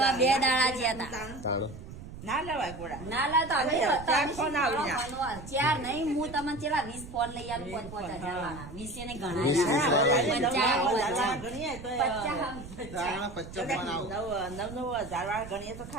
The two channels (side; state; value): right; noise; rumble, 13 dB below the sound